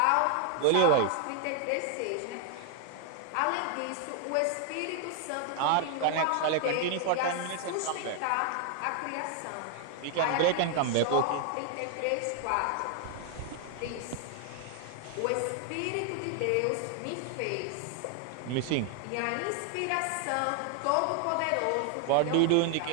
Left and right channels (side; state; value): both; different; correlation 0.00